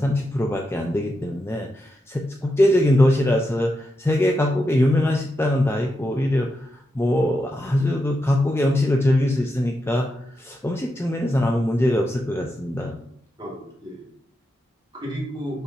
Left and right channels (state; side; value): normal; both; correlation 0.86